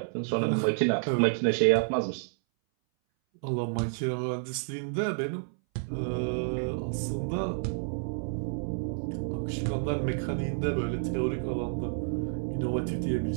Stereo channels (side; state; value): left; silent; 58 dB below the other